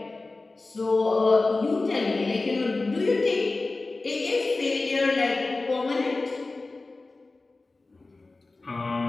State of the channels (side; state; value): right; quieter; 3.4 dB